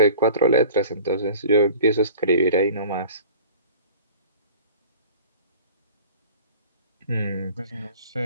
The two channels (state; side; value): inverted; both; correlation -0.44